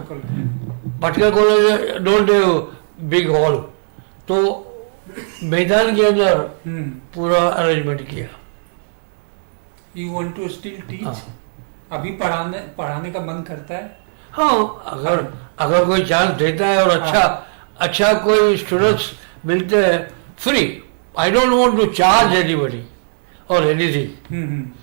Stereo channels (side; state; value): left; silent; digital silence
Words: college. Patkar College don't have big hall, तो मैदान के अंदर पूरा arrangement किया. You want to still teach? हाँ। अभी पढ़ाने पढ़ाने का मन करता है? हाँ, अगर अगर कोई चांस देता है और अच्छा कोई स्टूडेंट्स मिलते हैं free, I don't want to charge anybody और एनीथिंग।